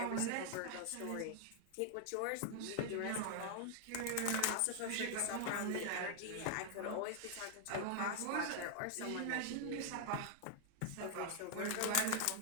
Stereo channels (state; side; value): different; both; correlation 0.00